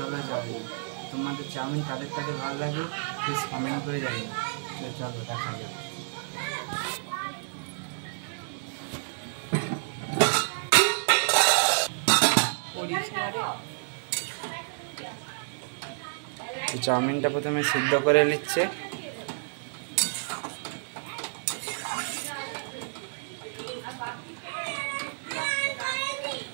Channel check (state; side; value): silent; left; 58 dB below the other